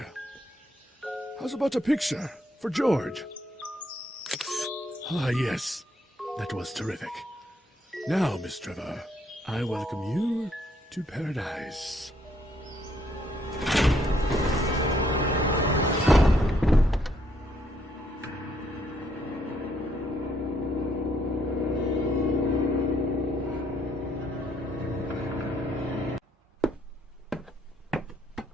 How's about a picture for George? Ah, yes. That was terrific. Now, Miss Trevor, I welcome you to paradise.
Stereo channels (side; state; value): both; normal; correlation 0.71